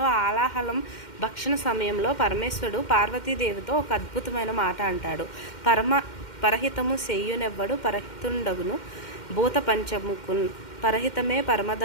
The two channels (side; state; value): right; late; 2.1 ms